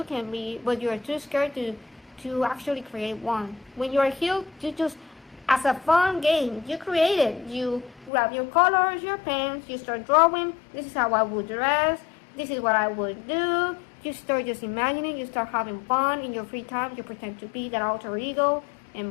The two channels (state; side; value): drops out; right; at 8.1 s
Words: can be, but you are too scared to actually create one. When you are healed, you just, as a fun game, you create it. You grab your colors, your pens, you start drawing. This is how I would dress. This is what I would do. You start just imagining, you start having fun in your free time. You pretend to be that alter ego,